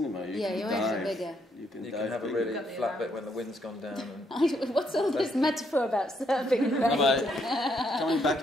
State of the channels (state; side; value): normal; both; correlation 0.74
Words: Your waves are bigger. You can have a really flat bit when the wind's gone down. What's all this metaphor about surfing and raining? Coming